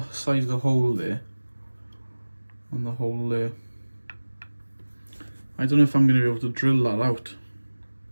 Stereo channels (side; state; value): both; inverted; correlation -1.00